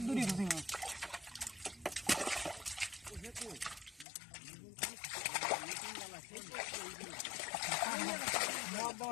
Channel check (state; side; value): drops out; right; at 4.0 s